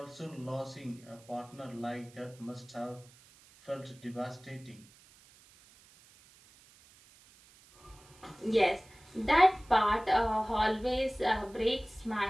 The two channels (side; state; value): right; noise; hiss, 26 dB below the sound